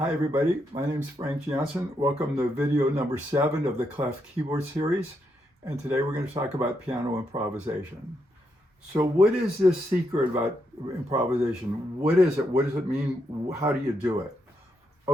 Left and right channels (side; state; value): both; normal; correlation 0.80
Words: everybody, my name is Frank Jansen. Welcome to video number 7 of the Clef Keyboard series. And today we're going to talk about piano improvisation. So what is this secret about improvisation? What is it? What does it mean? How do you do it?